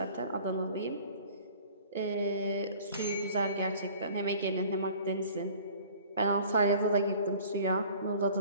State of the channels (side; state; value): both; inverted; correlation -0.48